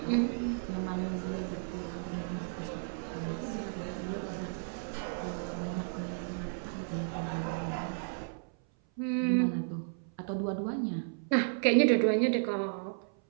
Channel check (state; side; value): silent; left; 55 dB below the other